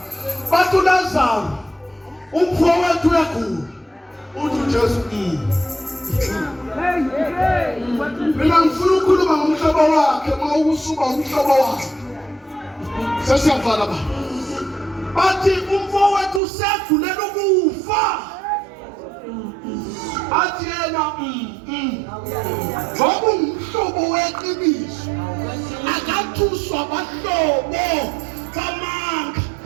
Bathi uLazaro umfowethu uyagula. Uthi uJesu mina ngifuna ukukhuluma ngomhlobo wakhe mawusuba umhlobo wakhe. Sesiyavala ba. Bathi umfowethu usegulela ukufa. Athi yena ngoba umhlobo weqiniso akathuswa abahlobo bamanga.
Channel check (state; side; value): drops out; left; at 16.4 s